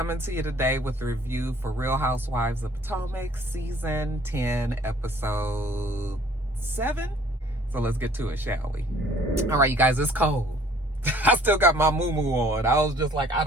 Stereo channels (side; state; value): both; normal; correlation 0.56